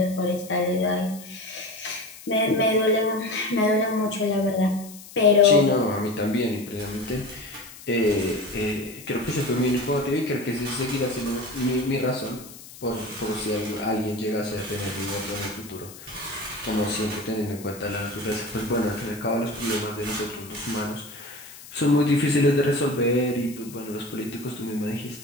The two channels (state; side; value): noise; left; hiss, 17 dB below the sound